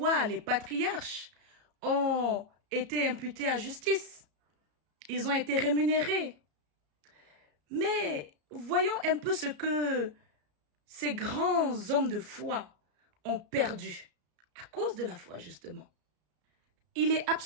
les patriarches ont été imputés à justice. Ils ont été rémunérés. Mais voyons un peu ce que ces grands hommes de foi ont perdu à cause de la foi, justement. Il est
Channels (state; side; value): late; left; 34 ms